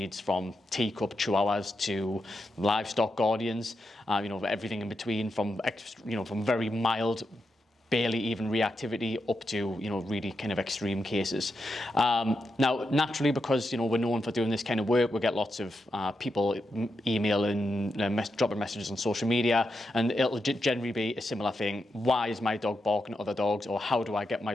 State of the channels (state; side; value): normal; both; correlation 0.86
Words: from teacup chihuahuas to livestock guardians, everything in between, from very mild, barely even reactivity up to really kind of extreme cases. Now naturally, because we're known for doing this kind of work, we get lots of people emailing, dropping messages on social media, and it'll generally be a similar thing. Why is my dog barking at other dogs, or how do I get my